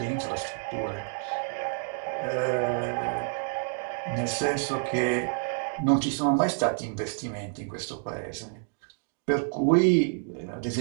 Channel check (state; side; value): silent; left; 59 dB below the other